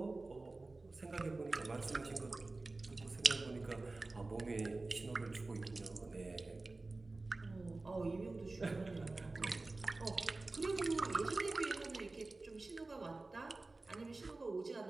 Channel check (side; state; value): left; quieter; 3.3 dB